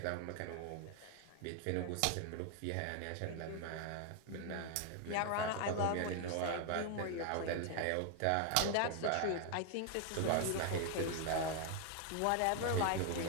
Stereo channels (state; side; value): different; both; correlation 0.00